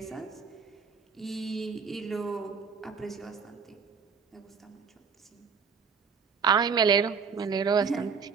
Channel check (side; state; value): left; quieter; 5.9 dB